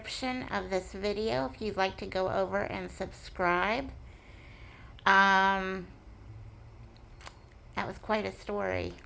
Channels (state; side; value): identical; both; correlation 1.00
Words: of this video if you'd like to go over and subscribe. That was quite a story.